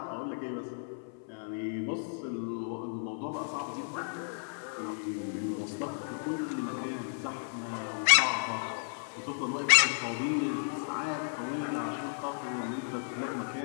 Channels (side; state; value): right; silent; 55 dB below the other